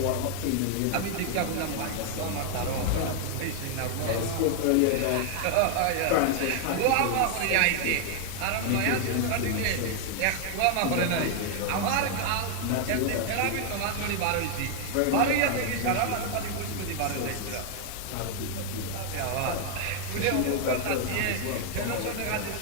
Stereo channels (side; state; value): both; different; correlation 0.00